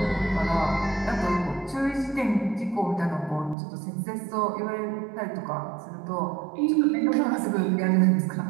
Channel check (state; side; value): drops out; left; at 3.6 s